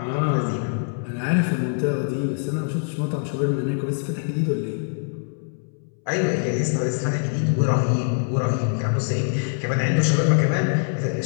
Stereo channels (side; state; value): right; silent; 63 dB below the other